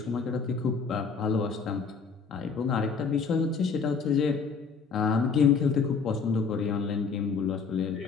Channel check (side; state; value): right; quieter; 5.3 dB